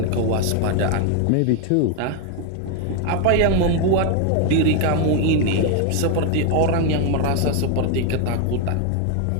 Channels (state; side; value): different; both; correlation 0.01